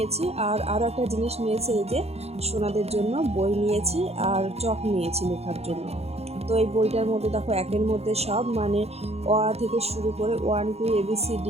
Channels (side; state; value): left; late; 0.30 ms